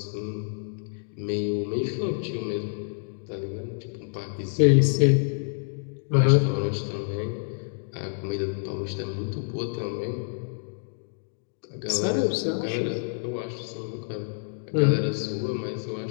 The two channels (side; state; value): right; silent; digital silence